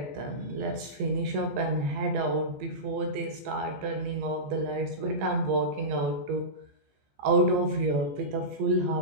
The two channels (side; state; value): left; late; 15 ms